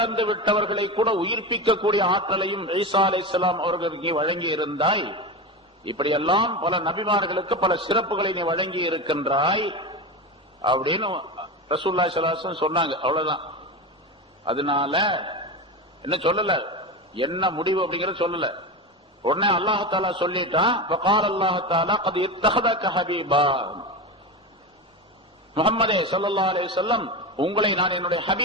விட்டவர்களை கூட உயிர்ப்பிக்கக்கூடிய ஆற்றலையும் ஈசா அலைஹிஸ்ஸலாம் அவர்களுக்கு வழங்கி இருந்தாய். இப்படியெல்லாம் பல நபிமார்களுக்கு பல சிறப்புகளை நீ வழங்கி இருக்கின்றாய் அப்படின்னு ரசூலுல்லாஹி ஸல்லல்லாஹு அலைஹி வஸல்லம் சொன்னாங்க. அவ்வளவுதான். அதனால என்ன சொல்லல, என்ன முடிவு அப்படிங்கறத சொல்லல. உடனே அல்லாஹ் தஆலா சொல்லிட்டான், வகால அல்லாஹ் தஆலா கத் இத்தஹதக ஹபீபா, முஹம்மதே ஸல்லல்லாஹு அலைஹி வஸல்லம் உங்களை நான் என்னுடைய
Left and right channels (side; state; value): both; normal; correlation 0.21